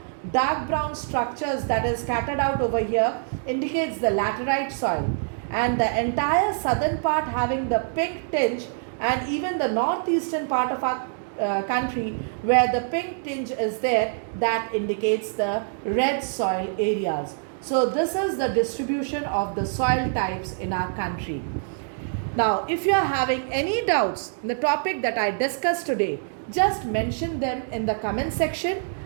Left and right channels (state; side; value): silent; left; digital silence